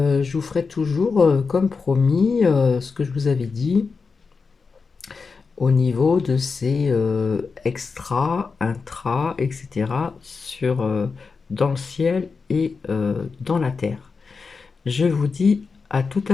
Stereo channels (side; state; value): right; quieter; 4.8 dB